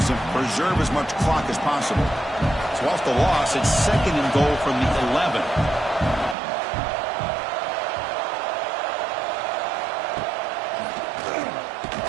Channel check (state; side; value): drops out; left; at 6.4 s